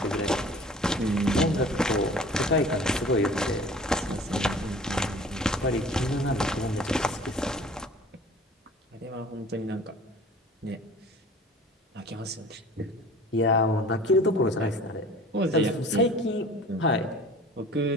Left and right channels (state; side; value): normal; both; correlation 0.45